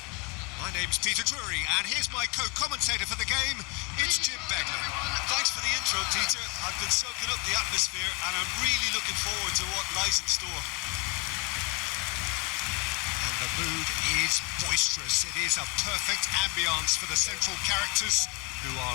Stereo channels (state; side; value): quieter; right; 30.2 dB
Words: My name's Peter Drury, and here's my co-commentator for the game. It's Jim Beglin. Thanks for the intro, Peter. I've been soaking up the atmosphere, and I'm really looking forward to what lies in store. The mood is boisterous. It is a perfect ambience for the central characters who